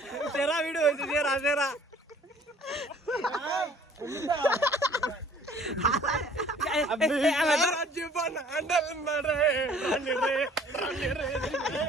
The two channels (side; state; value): both; normal; correlation 0.54